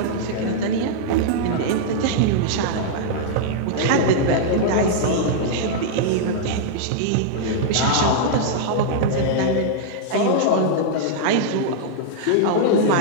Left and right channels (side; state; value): both; different; correlation -0.01